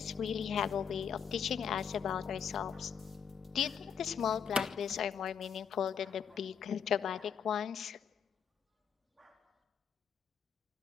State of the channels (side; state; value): right; quieter; 7.4 dB